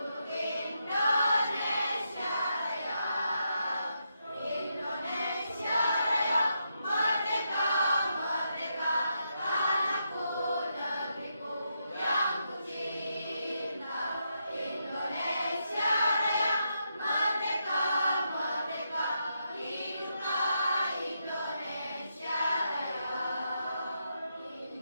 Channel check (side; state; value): both; inverted; correlation -0.82